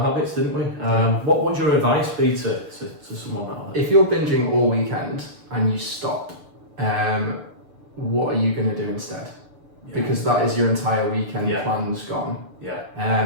habits, didn't we? What would your advice be to someone like that? If you're binging all weekend and you stop, what are you going to do instead? Yeah. Because that is your entire weekend plans gone.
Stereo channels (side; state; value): left; late; 6.8 ms